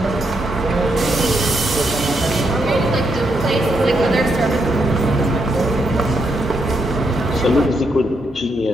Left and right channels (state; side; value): normal; both; correlation 0.79